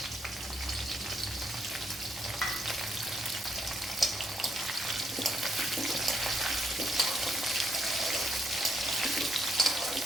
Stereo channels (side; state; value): both; normal; correlation 0.76